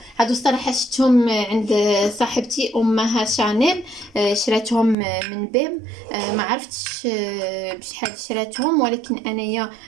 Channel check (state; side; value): drops out; left; at 5.0 s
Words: الصراحه شفتهم عند صاحبتي امها شانيل، شراتهم من بيم، ما عرفتش بشحال شراتهم، ولكن انايا